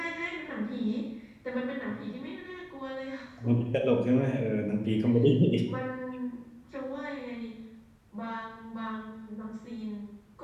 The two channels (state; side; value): identical; both; correlation 1.00